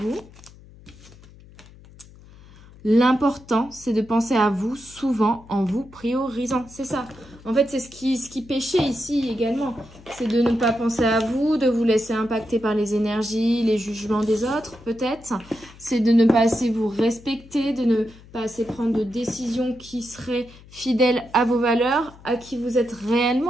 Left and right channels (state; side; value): noise; left; hum, 22 dB below the sound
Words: l'important, c'est de penser à vous souvent en vous priorisant. C'est ça. En fait, c'est ce qui pêchait ici également. C'est de ne pas penser à vous, de vous laisser impacter par les énergies, les jugements des autres, peut-être. C'est de ne pas assez vous respecter, de ne pas assez prendre de décisions qui seraient fidèles à vos valeurs, à qui vous êtes